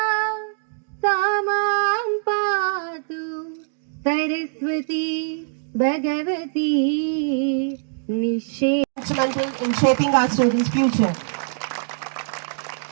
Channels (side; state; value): left; silent; digital silence